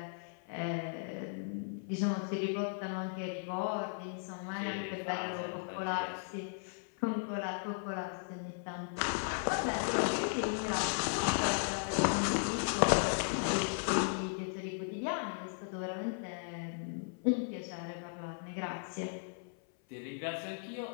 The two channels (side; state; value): right; silent; 54 dB below the other